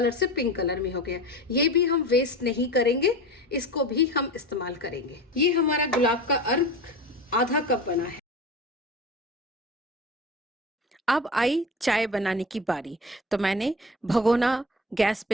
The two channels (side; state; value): both; normal; correlation 0.32